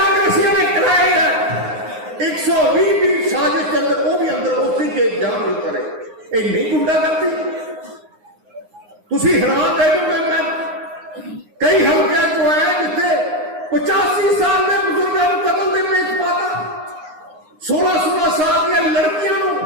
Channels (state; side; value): late; left; 9.7 ms